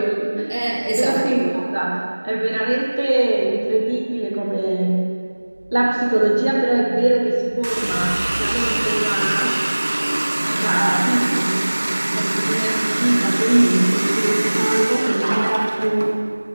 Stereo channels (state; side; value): inverted; both; correlation -1.00